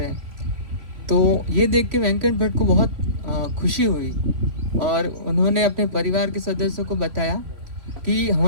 हैं। तो ये देख के वेंकट भट्ट को बहुत खुशी हुई और उन्होंने अपने परिवार के सदस्यों को बताया कि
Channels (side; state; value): left; late; 3.5 ms